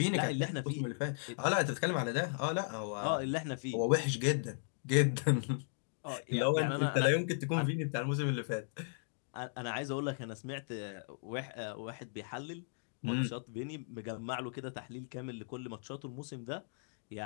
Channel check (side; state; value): right; silent; digital silence